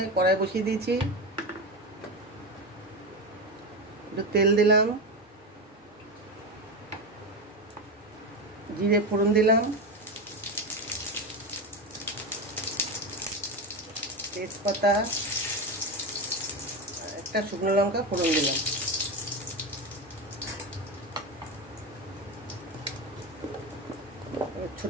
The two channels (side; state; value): both; normal; correlation 0.18